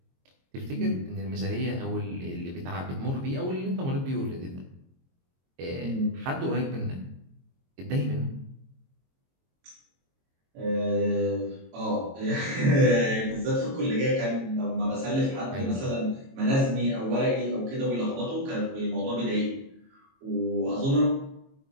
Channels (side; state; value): left; late; 22 ms